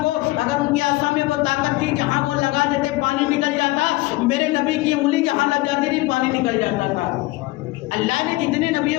کو اگر ان کی عصا میں وہ طاقت تھی جہاں وہ لگا دیتے پانی نکل جاتا، میرے نبی کی انگلی جہاں لگ جاتی تھی پانی نکل جاتا تھا۔ اللہ نے جتنے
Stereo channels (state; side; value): quieter; right; 20.1 dB